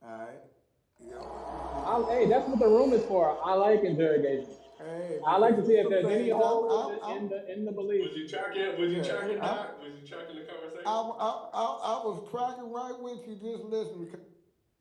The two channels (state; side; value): identical; both; correlation 1.00